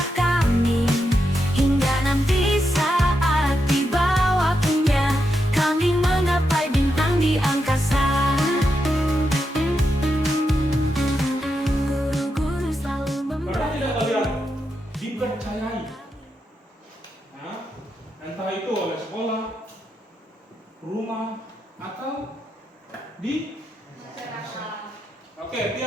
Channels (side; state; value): both; normal; correlation 0.85